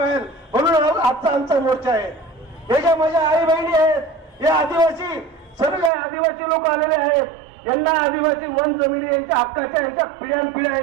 म्हणून आजचा आमचा मोर्चा आहे. हे ज्या माझ्या आई बहिणी आहेत, हे आदिवासी, सर्व आदिवासी लोक आलेले आहेत. यांना आदिवासी वन जमिनी यांच्या हक्काच्या, यांच्या पिढ्यानपिढ्या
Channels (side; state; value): left; drops out; at 5.9 s